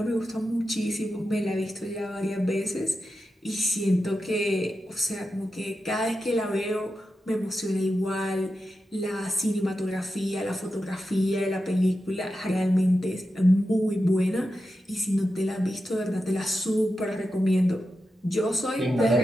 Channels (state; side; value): normal; both; correlation 0.90